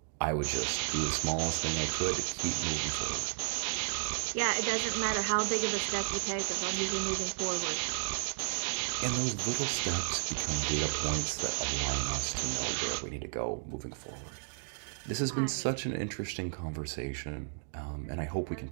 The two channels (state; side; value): silent; left; digital silence